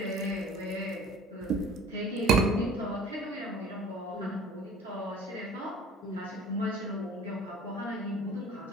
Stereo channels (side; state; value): both; normal; correlation 0.47